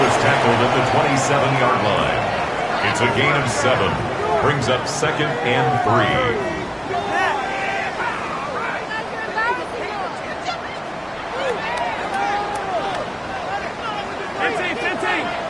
was tackled at the 27-yard line. It's a gain of 7. Brings up second and 3.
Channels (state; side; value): identical; both; correlation 1.00